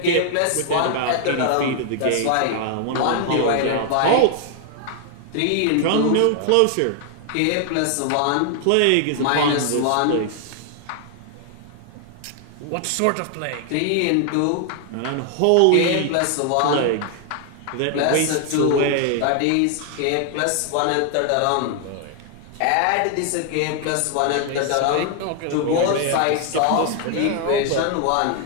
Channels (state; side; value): different; both; correlation 0.00